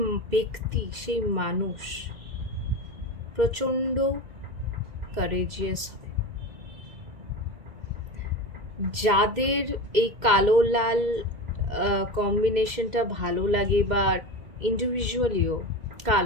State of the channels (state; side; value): late; left; 2.1 ms